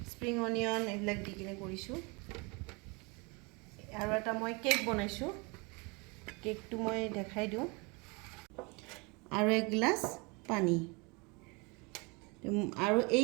স্প্ৰিং অনিয়ন এইবিলাক দি কিনে কৰিছোঁ। আৰু এটা মই কেক বনাইছোঁ, কেকটো মই দেখাই দিওঁ। আৰু এক গিলাচ পানী। আৰু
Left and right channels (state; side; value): quieter; left; 29.2 dB